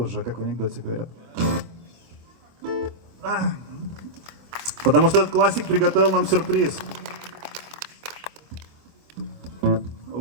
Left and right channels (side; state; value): left; late; 24 ms